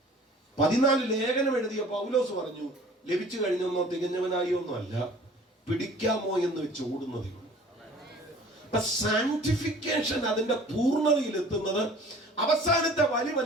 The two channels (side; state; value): both; normal; correlation 0.48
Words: 14 ലേഖനം എഴുതിയ പൗലോസ് പറഞ്ഞു, ലഭിച്ചു കഴിഞ്ഞൊന്നോ തികഞ്ഞവനായി ഒന്നും അല്ല, പിടിക്കാമോ എന്ന് വെച്ച് ഓടുന്നതേ ഉള്ളൂ. അപ്പൊ സാങ്ക്ടിഫിക്കേഷൻ അതിന്റെ പൂർണ്ണതയിൽ എത്തുന്നത് അവസാനത്തെ